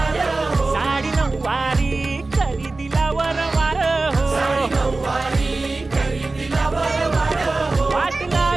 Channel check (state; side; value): quieter; left; 3.4 dB